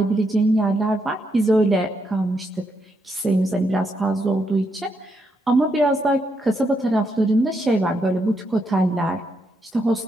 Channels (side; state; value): both; normal; correlation 0.79